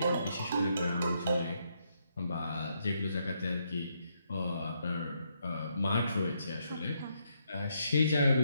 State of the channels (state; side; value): inverted; both; correlation -0.77